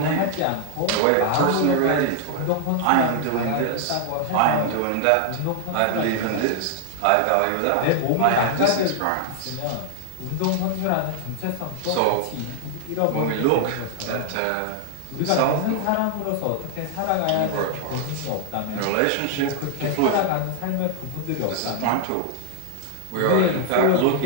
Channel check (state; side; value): different; both; correlation 0.00